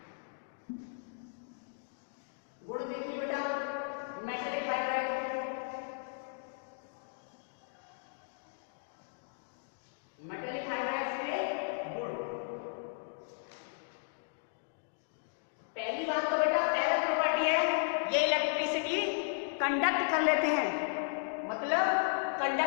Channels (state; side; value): silent; right; digital silence